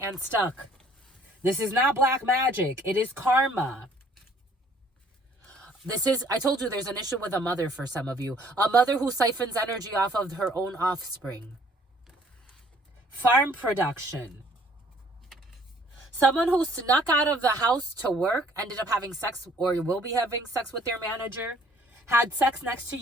stuck. This is not black magic. It is karma. I told you there's an issue with a mother for some of you. A mother who siphons energy off of her own offspring. Farm production. Someone who snuck out of the house to work, ended up having sex or will be having sex with their manager. Had sex next to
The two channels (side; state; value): both; normal; correlation 0.59